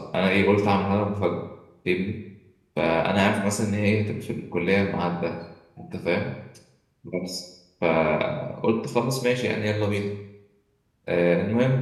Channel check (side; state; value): both; identical; correlation 1.00